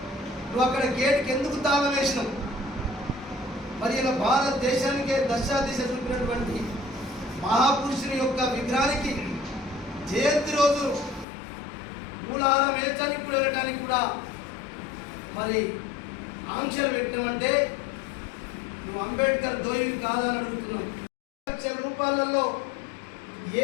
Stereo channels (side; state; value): right; drops out; at 11.2 s